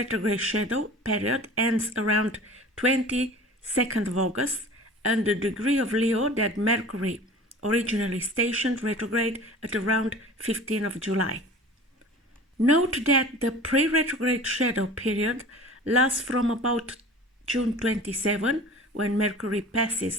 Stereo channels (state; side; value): normal; both; correlation 0.41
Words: shadow period ends around 22nd of August and the degree of Leo that Mercury originally stationed retrograde at around 15th of July. Note that the pre-retrograde shadow period lasts from about June 27, when Mercury